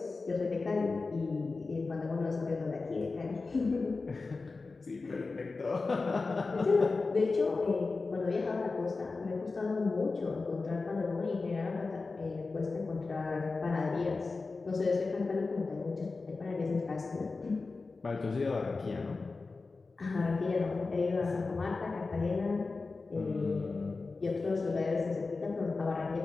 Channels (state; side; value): quieter; right; 3.9 dB